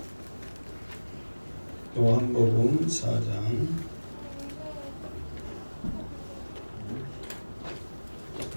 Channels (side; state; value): both; inverted; correlation -1.00